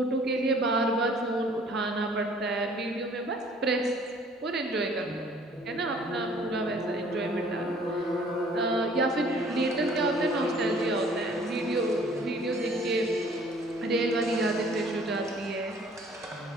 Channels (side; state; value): both; normal; correlation 0.56